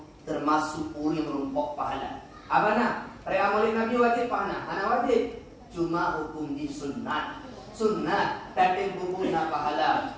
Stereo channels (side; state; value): both; identical; correlation 1.00